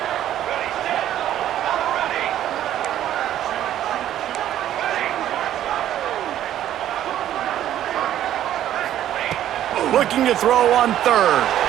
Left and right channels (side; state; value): left; quieter; 11.8 dB